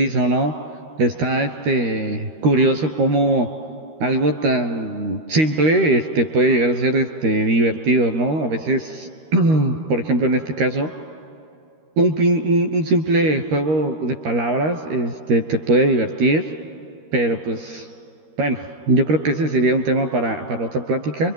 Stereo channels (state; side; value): late; left; 13 ms